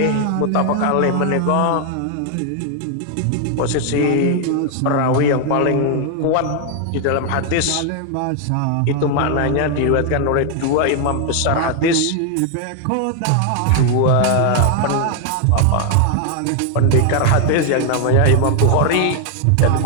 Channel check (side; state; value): both; different; correlation 0.00